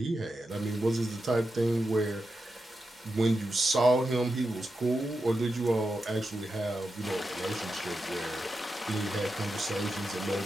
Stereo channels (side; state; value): both; normal; correlation 0.89